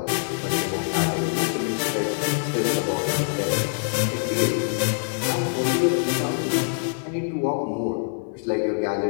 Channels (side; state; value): right; silent; digital silence